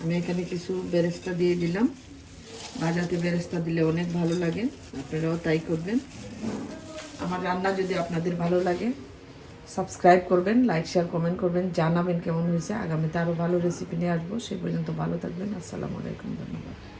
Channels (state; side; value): identical; both; correlation 1.00